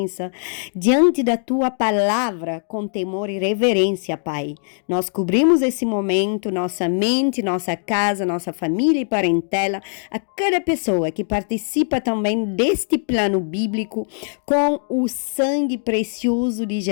diante da Tua palavra, com temor e reverência, Pai. Nós cobrimos esse momento, nossa mente, nossa casa, nossa família e parentela, a cada pessoa que participa também deste plano bíblico, com o sangue precioso de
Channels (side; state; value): right; silent; digital silence